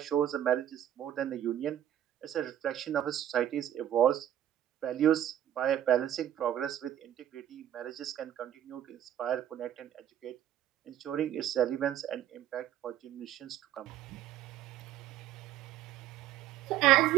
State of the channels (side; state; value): left; quieter; 11.4 dB